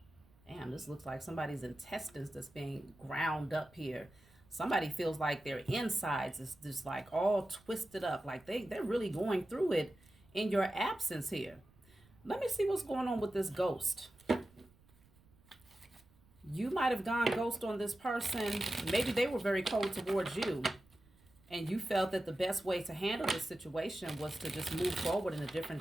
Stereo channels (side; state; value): right; noise; rumble, 28 dB below the sound